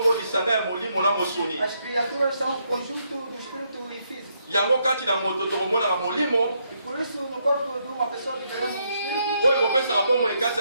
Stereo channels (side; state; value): both; inverted; correlation -0.76